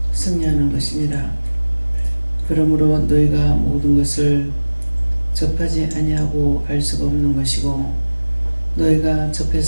승리하는 것이니라. 그러므로 너희가 모든 것을 접하지 아니하고 알 수가 없는 것이고 너희가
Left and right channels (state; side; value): inverted; both; correlation -1.00